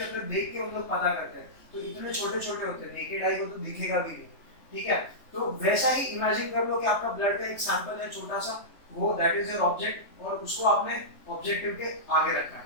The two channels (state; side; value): late; right; 3.2 ms